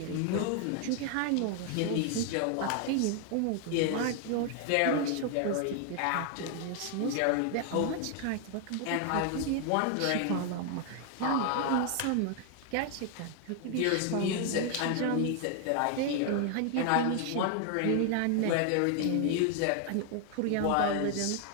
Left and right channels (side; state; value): both; different; correlation 0.00